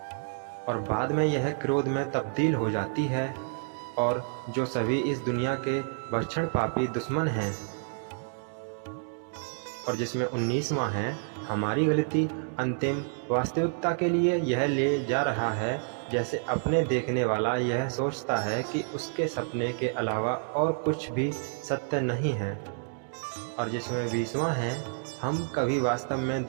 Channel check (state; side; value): silent; left; digital silence